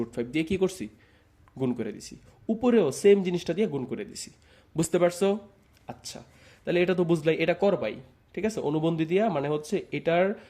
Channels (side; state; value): both; identical; correlation 1.00